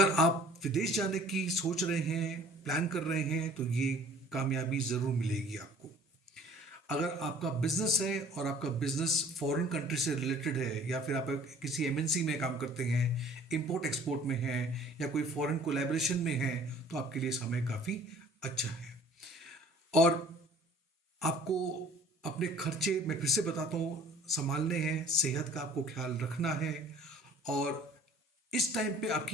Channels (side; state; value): both; normal; correlation 0.51